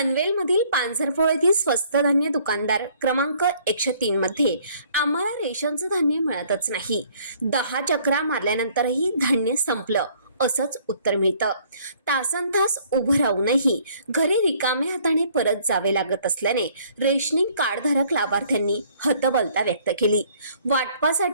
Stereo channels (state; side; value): inverted; both; correlation -0.60